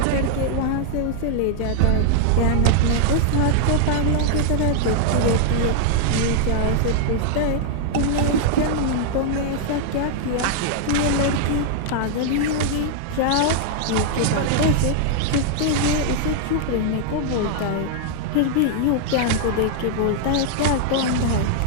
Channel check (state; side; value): different; both; correlation -0.01